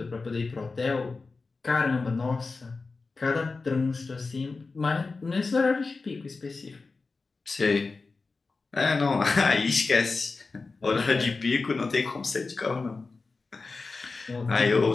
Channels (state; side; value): quieter; right; 4.0 dB